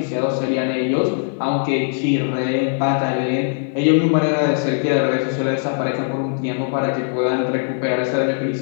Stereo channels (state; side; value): silent; right; digital silence